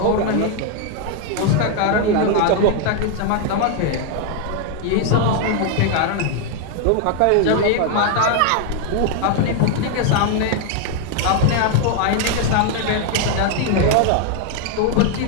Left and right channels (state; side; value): different; both; correlation 0.01